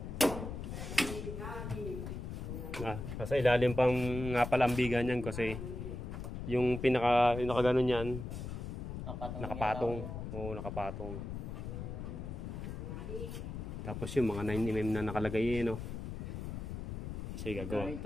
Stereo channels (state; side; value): noise; left; rumble, 6 dB below the sound